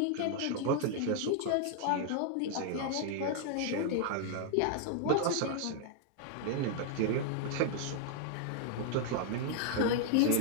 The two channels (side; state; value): both; different; correlation -0.01